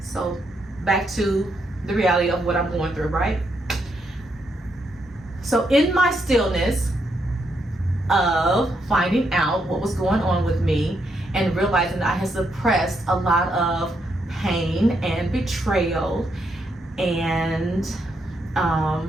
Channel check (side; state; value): both; normal; correlation 0.78